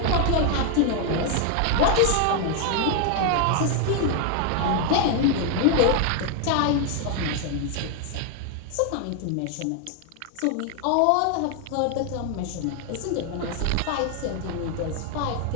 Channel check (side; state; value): both; different; correlation 0.00